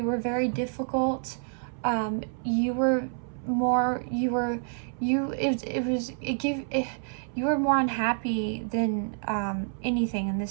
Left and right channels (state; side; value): silent; left; 59 dB below the other